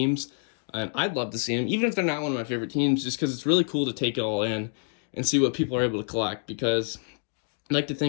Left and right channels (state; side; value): silent; right; 60 dB below the other